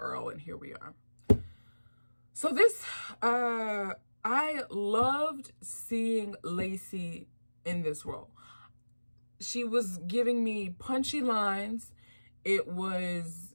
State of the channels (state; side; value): inverted; both; correlation -1.00